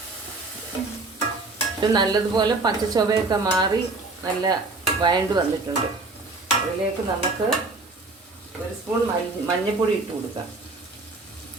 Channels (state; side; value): quieter; left; 3.5 dB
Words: ഇത് നല്ലതുപോലെ പച്ചച്ചൊവയൊക്കെ മാറി നല്ല വഴണ്ട് വന്നിട്ടുണ്ട്. അതിലേക്ക് നമുക്ക് 1 സ്പൂൺ മഞ്ഞൾപ്പൊടി ഇട്ട് കൊടുക്കാം.